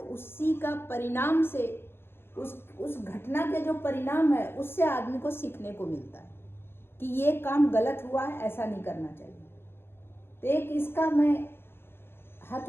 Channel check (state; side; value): late; right; 0.11 ms